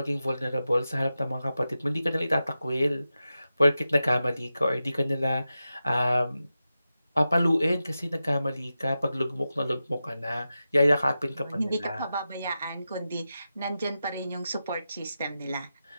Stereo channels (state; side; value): inverted; both; correlation -0.92